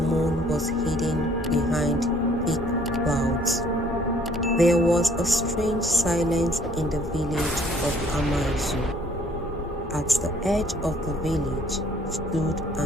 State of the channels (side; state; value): both; normal; correlation 0.59